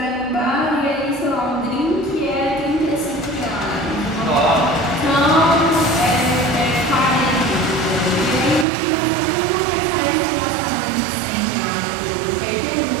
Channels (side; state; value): left; drops out; at 8.7 s